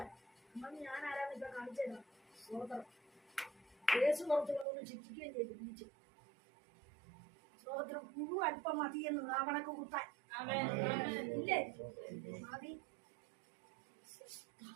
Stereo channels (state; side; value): drops out; left; at 4.7 s